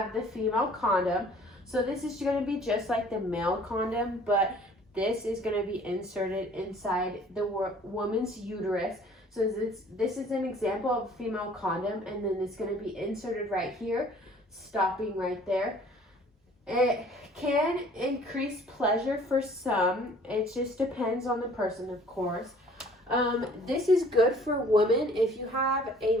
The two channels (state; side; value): normal; both; correlation 0.53